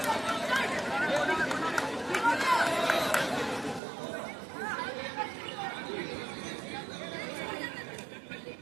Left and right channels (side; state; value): left; drops out; at 3.8 s